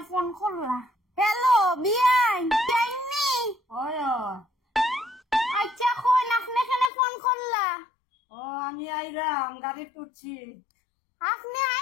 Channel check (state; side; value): drops out; right; at 6.9 s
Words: ফোন করলা হ্যালো বিয়াই কেমনি ওই আচ্ছা কোন আপনি এখানে ফোন করলা ও আমি আইরাম গাড়ি টুটছি আপনি